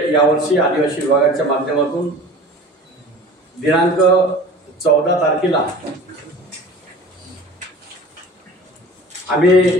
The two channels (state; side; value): normal; both; correlation 0.41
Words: यावर्षी आदिवासी विभागाच्या माध्यमातून दिनांक 14 तारखेला